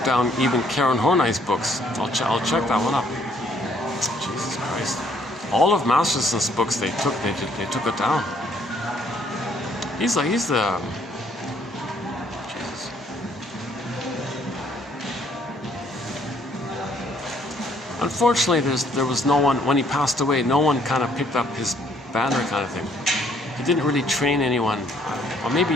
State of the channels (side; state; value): both; normal; correlation 0.65